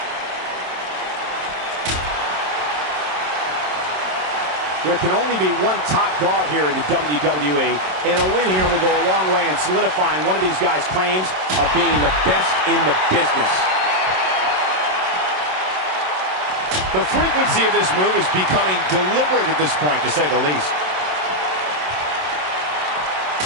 There can only be one top dog here in the WWE, and a win here will go a long way in solidifying one of these guys' claims of being the best in the business. The frequency of this move is becoming deliberate at this point, to say the least.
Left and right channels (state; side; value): late; left; 27 ms